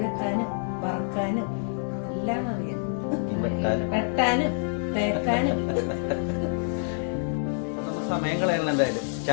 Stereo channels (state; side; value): silent; right; 60 dB below the other